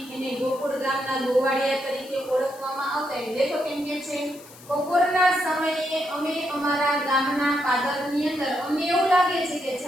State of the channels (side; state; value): left; noise; hiss, 21 dB below the sound